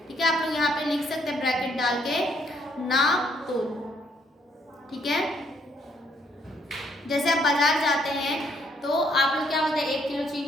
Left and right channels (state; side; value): normal; both; correlation 0.69